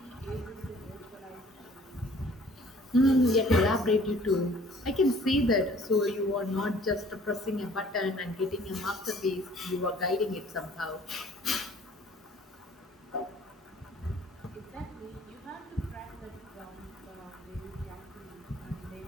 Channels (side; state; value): both; normal; correlation 0.54